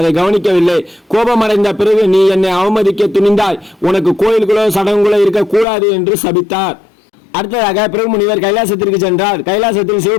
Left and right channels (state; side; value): drops out; right; at 5.7 s